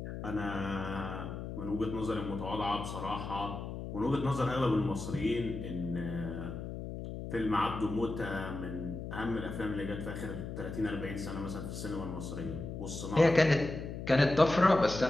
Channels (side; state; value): left; noise; hum, 7 dB below the sound